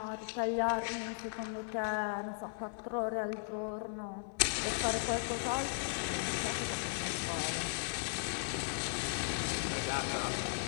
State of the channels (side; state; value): right; silent; 53 dB below the other